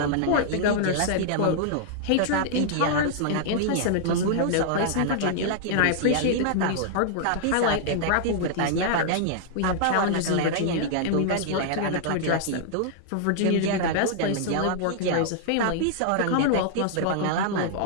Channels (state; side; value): different; both; correlation -0.01